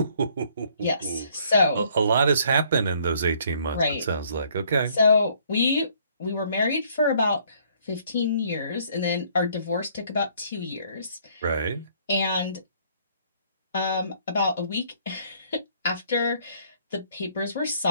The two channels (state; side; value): inverted; both; correlation -0.62